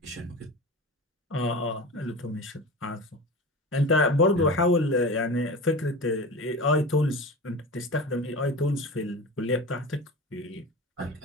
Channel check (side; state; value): both; normal; correlation 0.31